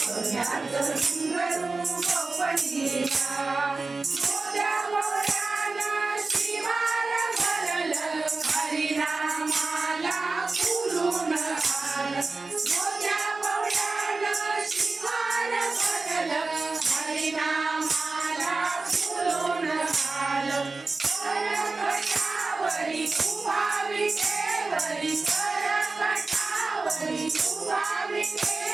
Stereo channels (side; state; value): left; quieter; 3.7 dB